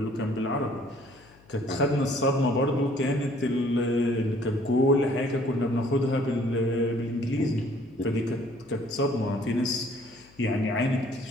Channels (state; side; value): noise; left; hum, 27 dB below the sound